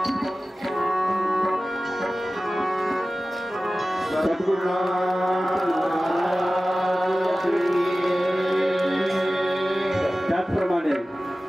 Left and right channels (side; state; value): both; normal; correlation 0.96